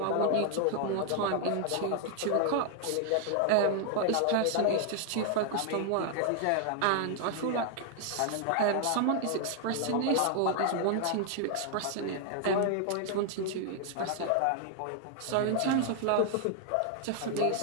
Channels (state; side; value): different; both; correlation 0.00